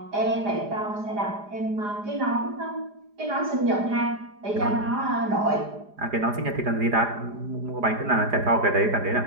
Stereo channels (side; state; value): left; late; 4.9 ms